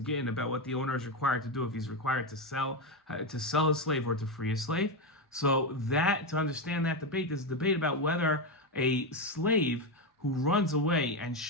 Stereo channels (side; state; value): both; normal; correlation 0.10